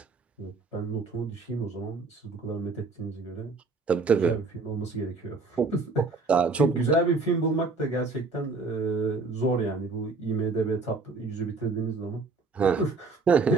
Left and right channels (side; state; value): left; quieter; 3.9 dB